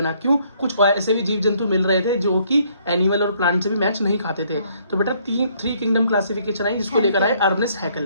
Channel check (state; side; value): inverted; both; correlation -0.66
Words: क्यों? कुछ ऐसे भी जीव जंतु मिल रहे थे जो कि एनिमल और प्लांट से भी मैच नहीं खाते थे। तो बेटा थ्री किंगडम क्लासिफिकेशन आई, जिसको लेकर आए अर्नेस्ट